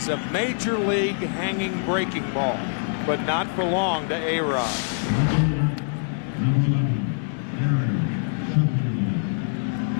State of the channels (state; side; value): silent; right; digital silence